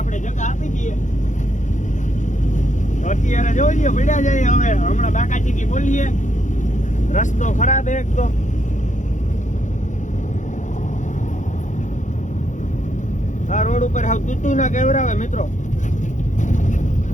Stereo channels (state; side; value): late; right; 0.36 ms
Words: જગા આપી દઈએ તો અત્યારે જોઈ લઈએ પડ્યા જઈએ હવે હમણાં બાકાચીકી બોલીએ રસ્તો ખરાબ એક તો આ રોડ ઉપર હાવ તૂતું ના કેવરાવે મિત્રો